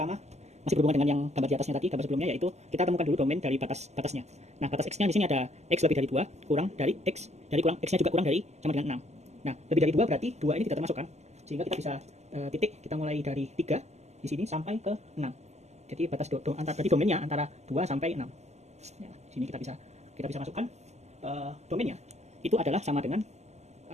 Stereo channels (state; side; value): late; left; 0.33 ms